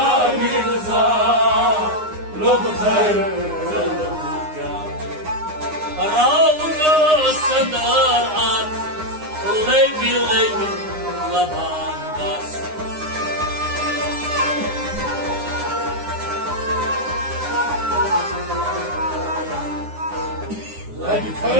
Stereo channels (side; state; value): left; late; 9.7 ms